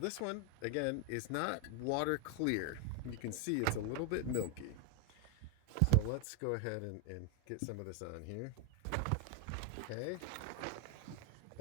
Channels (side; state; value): both; different; correlation 0.01